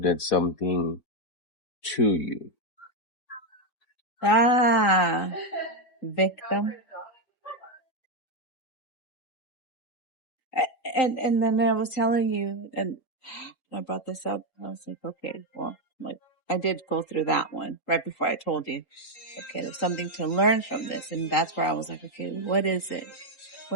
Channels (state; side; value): late; right; 3.8 ms